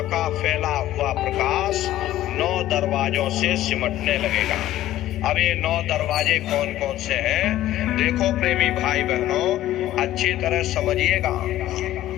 का फैला हुआ प्रकाश 9 दरवाजों से सिमटने लगेगा। अब ये 9 दरवाजे कौन कौन से हैं? देखो प्रेमी भाई बहनों, अच्छी तरह समझिएगा।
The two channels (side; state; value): right; quieter; 14.0 dB